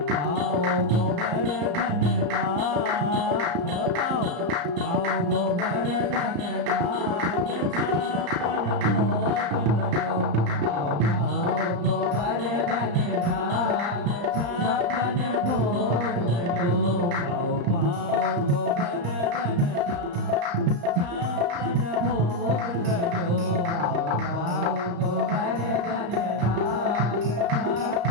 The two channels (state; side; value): late; left; 34 ms